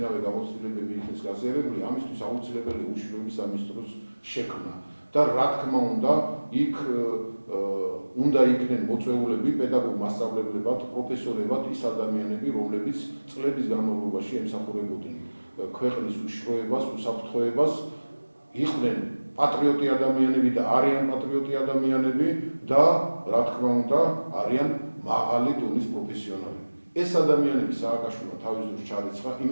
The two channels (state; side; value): inverted; both; correlation -1.00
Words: გამოცდილებები იქნეს გაზიარებული, ამისთვის აუცილებელია უშიშროების სამინისტროს შექმნა. და რა თქმა უნდა, იქ უნდა იქნენ მოწვეულები, პედაგოგ-მასწავლებლებად, პროფესორებად ის ადამიანები, რომლებიც წლების განმავლობაში ემსახურებოდნენ ქვეყნის უშიშროებას, უსაფრთხოებას, იყვნენ პატრიოტი ადამიანები და არიან პატრიოტი ადამიანები და რა თქმა უნდა, არიან მაღალი დონის პროფესიონალები. ეს ადამიანები სააკაშვილმა თავის დროს ჩარიცხა,